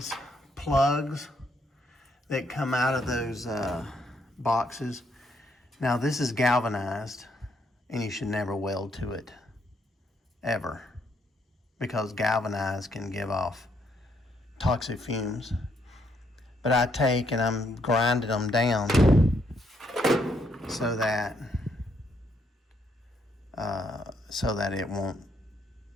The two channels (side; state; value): both; normal; correlation 0.73